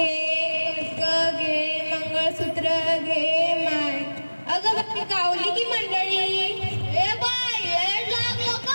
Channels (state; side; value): inverted; both; correlation -1.00